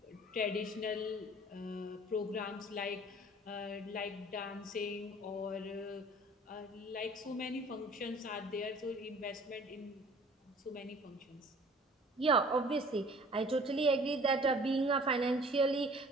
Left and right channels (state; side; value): normal; both; correlation 0.50